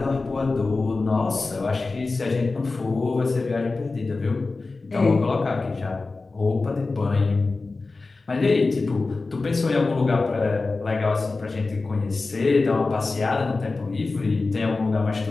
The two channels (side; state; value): right; quieter; 3.7 dB